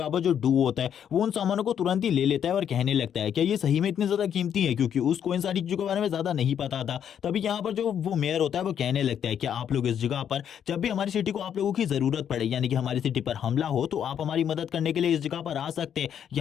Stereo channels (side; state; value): right; quieter; 8.9 dB